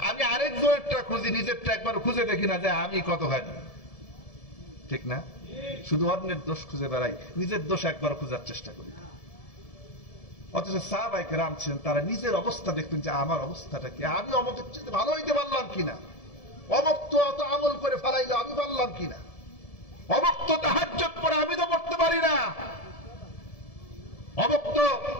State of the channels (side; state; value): right; late; 1.7 ms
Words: আমি আরেকজনেরটা খুঁজি, নিজেরটা একবার খুঁজে দেখি না যে আমি কতখানি। ঠিক না? শুধু অন্যের দোষ খুঁজে বেড়াই, নিজের দোষ একবার খোঁজার চেষ্টা করি না। অথচ সাহাবায়ে কেরাম ছিলেন, তারা নিজের অবস্থা দেখতেন যে আমার অবস্থাটা কি, আমি অমকের চেয়ে ভালো হইতে পারলাম কিনা, অমক তো অত আমল করে ফেলাইলো আমি পারলাম কিনা, অমক তো তাহাজ্জুদ পড়ে আমি তো পড়তে পারি না, অমক তো